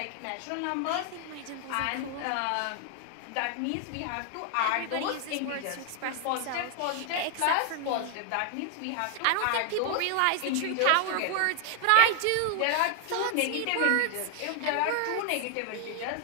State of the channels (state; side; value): different; both; correlation 0.00